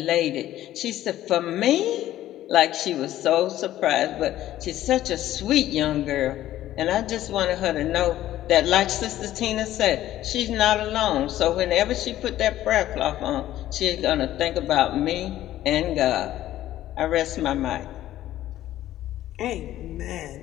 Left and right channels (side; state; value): right; quieter; 13.6 dB